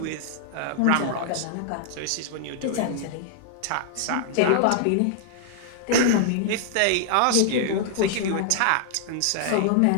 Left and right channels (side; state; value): both; different; correlation 0.00